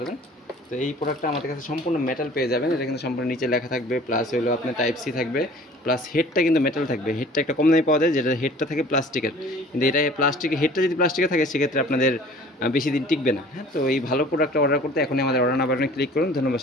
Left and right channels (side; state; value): both; normal; correlation 0.48